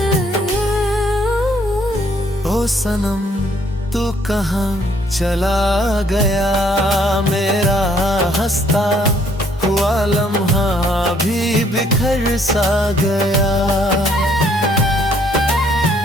ओ सनम तू कहाँ चला गया, मेरा हंसता हुआ लम्हा भी बिखर सा गया।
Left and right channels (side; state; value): both; normal; correlation 0.65